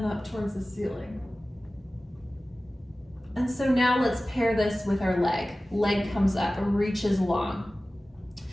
up towards the ceiling. And so now let's pair this with our leg. Leg comes up, reaches long.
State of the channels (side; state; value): both; normal; correlation 0.96